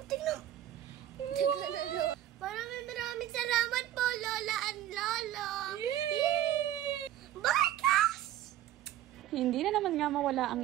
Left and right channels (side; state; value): left; quieter; 12.5 dB